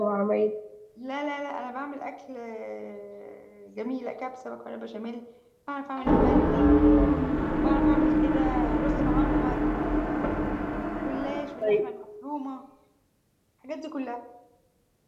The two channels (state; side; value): identical; both; correlation 1.00